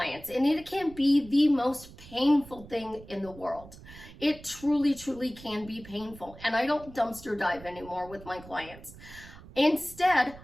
and it can be the most painful thing in the world. It truly, truly can be painful. And I don't dumpster dive anymore with my clients. Instead,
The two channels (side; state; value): right; noise; rumble, 18 dB below the sound